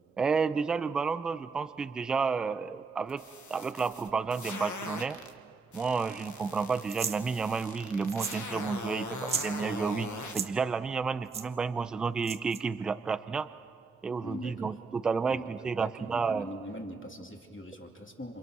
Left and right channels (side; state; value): left; quieter; 4.5 dB